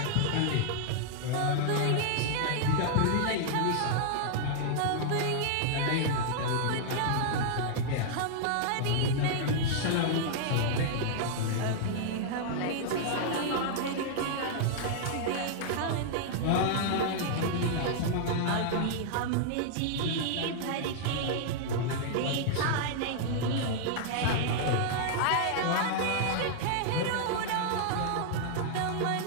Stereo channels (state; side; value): different; both; correlation -0.01